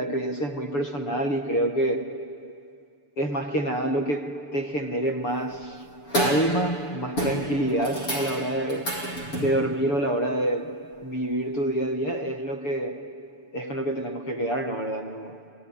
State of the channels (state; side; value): late; right; 6.9 ms